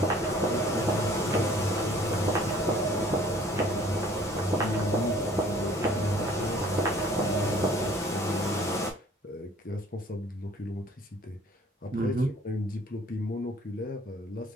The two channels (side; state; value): both; normal; correlation 0.54